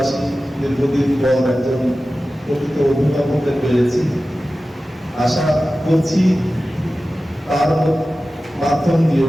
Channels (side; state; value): both; normal; correlation 0.95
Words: দীর্ঘদিন পর একজন প্রকৃত অভিভাবককে পেয়েছি। আশা করছি তার মাধ্যম দিয়ে